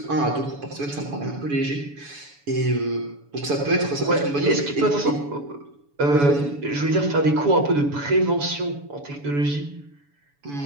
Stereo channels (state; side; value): late; left; 7.0 ms